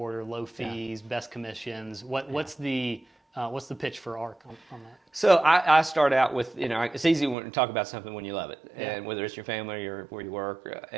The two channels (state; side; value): drops out; left; at 7.4 s